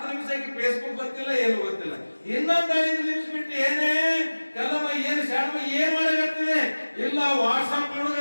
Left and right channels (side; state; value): both; inverted; correlation -1.00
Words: ನಿಮಿಷಕ್ಕೆ ಫೇಸ್ಬುಕ್ ಗೊತ್ತಿಲ್ಲ, ಏನು ಗೊತ್ತಿಲ್ಲ. ಇನ್ನೊಂದ್ 5 ನಿಮಿಷ ಬಿಟ್ಟು ಏನೇ ಕಲ್ಲಮ್ಮ ಏನ್ ಶಾಣಮ್ಮ ಏನ್ ಮಾಡಕತ್ತಿದೆ? ಇಲ್ಲ ವಾಟ್ಸಾಪ್